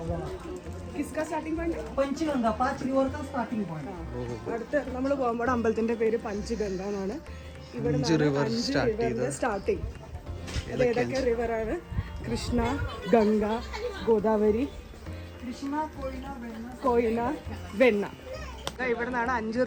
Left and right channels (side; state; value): both; identical; correlation 1.00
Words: കിസ്ക സ്റ്റാർട്ടിംഗ് പോയിന്റ് पंचगंगा 5 रिवर का स्टार्टिंग पॉइंट. അടുത്ത് നമ്മൾ പോകുമ്പോൾ അമ്പലത്തിന്റെ പേര് പഞ്ചഗംഗ എന്നാണ്. ഇവിടെ 5 റിവറിന്റെ സ്റ്റാർട്ടിങ്. അത് ഏതൊക്കെ റിവറാണ്? കൃഷ്ണ, ഗംഗ, ഗോദാവരി, कृष्णा कोयना वेन्ना കോയിന, വെണ്ണ. ഇവിടെ നിന്നാണ് 5